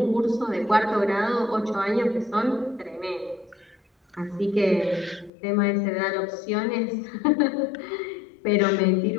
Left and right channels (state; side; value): drops out; right; at 5.3 s